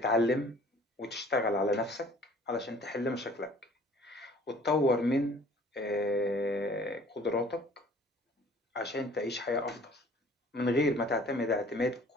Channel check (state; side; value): normal; both; correlation 0.53